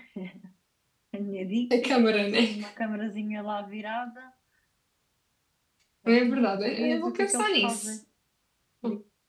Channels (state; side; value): identical; both; correlation 1.00